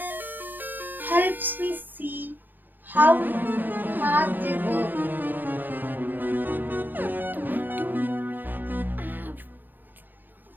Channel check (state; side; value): late; left; 0.090 ms